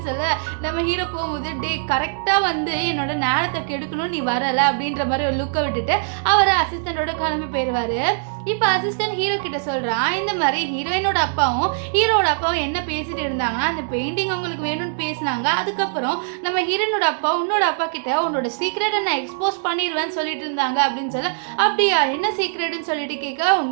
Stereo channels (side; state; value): left; silent; digital silence